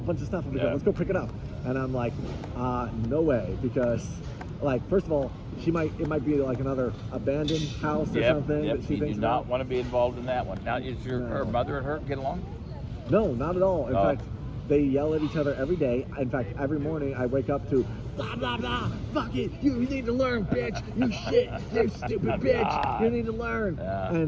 of stuff over there. Let's go pick it up. And I'm like, no way, because like, first of all, it might be like another abandoned house or something. Yep. That she thinks do not want to be involved in that one. Now, is her mother and her get along? No, not at all. In fact, they yell at each other every day. In fact, every morning I wake up to blah, blah, blah, fuck it, you need to learn, bitch, you shit, you stupid bitch, you need to learn. Yeah.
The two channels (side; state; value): both; identical; correlation 1.00